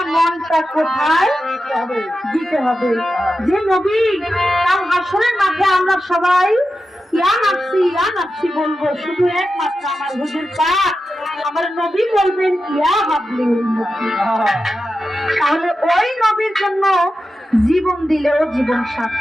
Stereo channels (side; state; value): both; normal; correlation 0.91